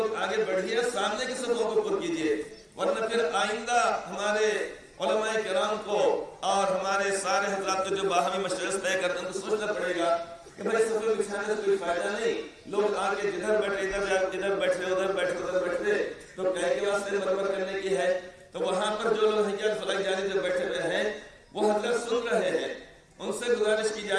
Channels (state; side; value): identical; both; correlation 1.00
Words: آگے بڑھیے, سامنے کی صفوں کو پر کیجئے, ورنہ پھر آئندہ ہمارے علماء کرام کو اور ہمارے سارے حضرات کو جو باہمی مشورے طے کرتے ہیں تو سوچنا پڑے گا کہ بھائی صفیں بچھانے سے کوئی فائدہ نہیں. لوگ آگے جدھر بیٹھے ادھر بیٹھے ادھر بیٹھے تو کہے کے واسطے مرمر کرنے کی ہے. تو وہاں پر جو لوگ حجاز فلک جانی جو بیٹھے ہوئے ہیں وہ حضرت سن رہے ہیں. ان سے گزارش کی